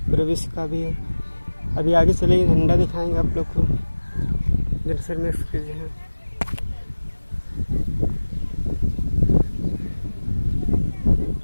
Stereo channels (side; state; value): both; inverted; correlation -1.00